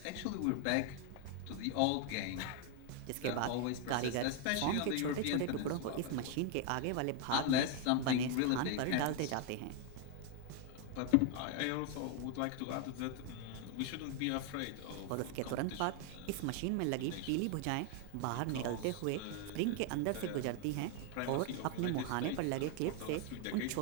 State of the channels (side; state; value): both; different; correlation 0.00